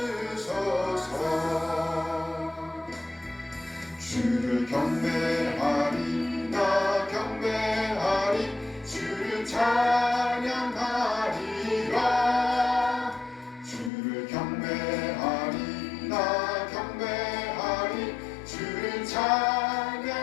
주를 경배하리, 나 경배하리, 주를 찬양하리라. 주를 경배하리, 나 경배하리, 주를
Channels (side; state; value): right; drops out; at 13.9 s